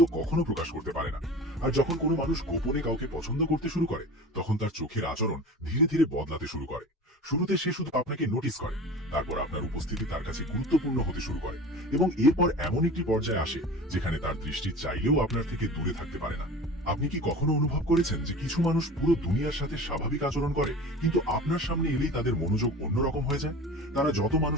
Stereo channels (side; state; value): both; normal; correlation 0.36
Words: কখনো প্রকাশ করতে পারে না। আর যখন কোনো মানুষ গোপনে কাউকে পছন্দ করতে শুরু করে, তখন তার চোখের আচরণ ধীরে ধীরে বদলাতে শুরু করে। শুরুতে সে শুধু আপনাকে নোটিস করে, তারপর আপনার উপস্থিতি তার কাছে গুরুত্বপূর্ণ হতে শুরু করে, এবং এরপর এমন একটি পর্যায়ে আসে যেখানে তার দৃষ্টি চাইলেও আপনার থেকে দূরে থাকতে পারে না। আপনি কি কখনো অনুভব করেছেন যে কিছু মানুষ পুরো দুনিয়ার সাথে স্বাভাবিক আচরণ করে, কিন্তু আপনার সামনে এলেই তাদের মনোযোগ অন্যরকম হয়ে যায়? তারা যত